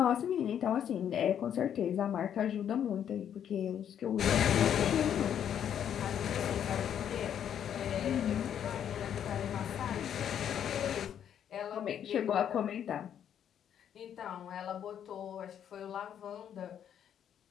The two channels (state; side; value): quieter; right; 9.3 dB